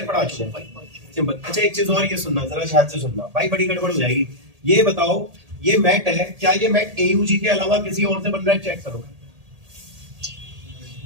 पढ़ा चुका हूँ भाई, सिंपल। अच्छा एक चीज और ये सुनना, जरा ध्यान से सुनना भाई, बड़ी गड़बड़ हो जाएगी। ये बताओ ये मैट है, क्या ये मैट AUG के अलावा किसी और से बन रहा है? चेक करो,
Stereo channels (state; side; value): late; left; 1.8 ms